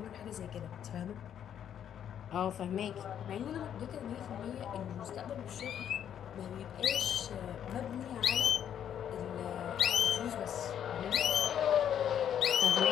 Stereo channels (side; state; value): right; quieter; 9.4 dB